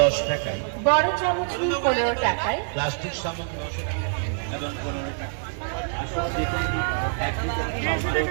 টাকায়। বড় চামচ নিন 15 টাকায়। প্লাস্টিক সামগ্রী এবং 15 টাকা। আসলে দেখুন এক লিটার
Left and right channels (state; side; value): silent; left; 61 dB below the other